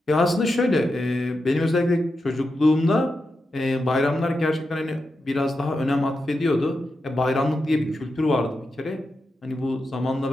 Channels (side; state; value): both; normal; correlation 0.88